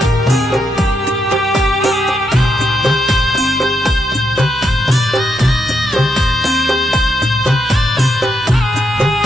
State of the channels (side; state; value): both; normal; correlation 0.80